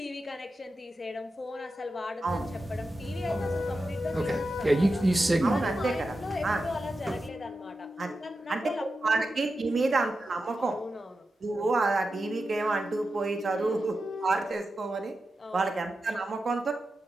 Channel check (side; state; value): both; normal; correlation 0.90